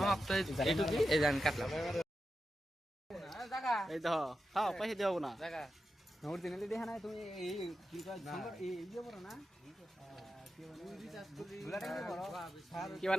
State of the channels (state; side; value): normal; both; correlation 0.89